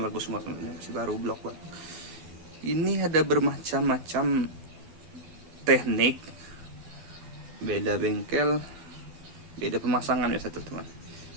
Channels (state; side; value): late; left; 12 ms